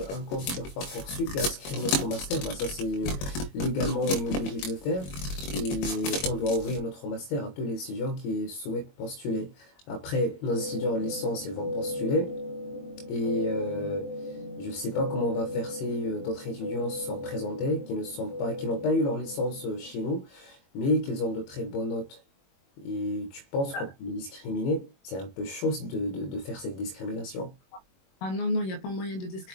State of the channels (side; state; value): right; late; 21 ms